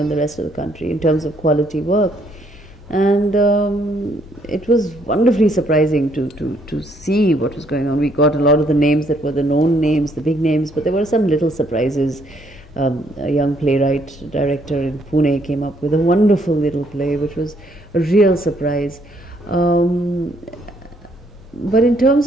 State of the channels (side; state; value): both; normal; correlation 0.69